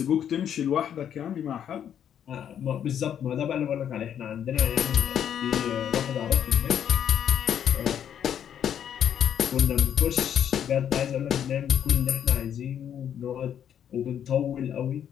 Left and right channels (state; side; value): quieter; right; 9.3 dB